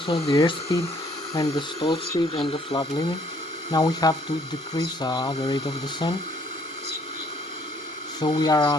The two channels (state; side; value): normal; both; correlation 0.63